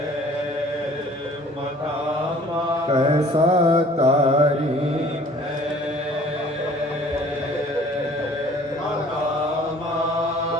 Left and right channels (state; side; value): normal; both; correlation 0.52